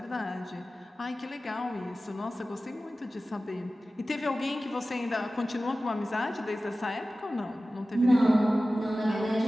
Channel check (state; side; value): normal; both; correlation 0.96